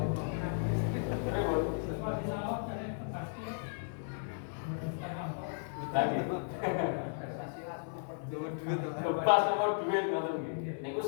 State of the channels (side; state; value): right; silent; 54 dB below the other